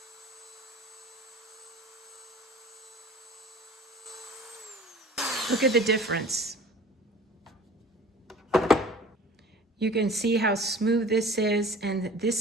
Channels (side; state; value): both; normal; correlation 0.44